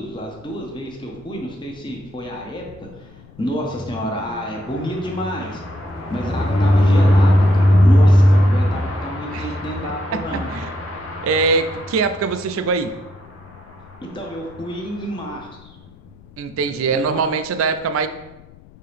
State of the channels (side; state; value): left; noise; rumble, 24 dB below the sound